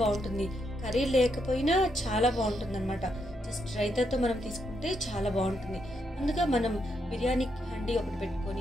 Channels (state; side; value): normal; both; correlation 0.79